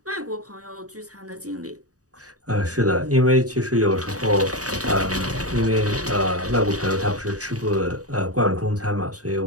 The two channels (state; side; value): late; left; 0.66 ms